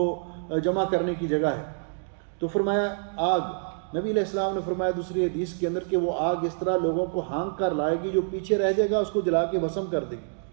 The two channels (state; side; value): silent; left; digital silence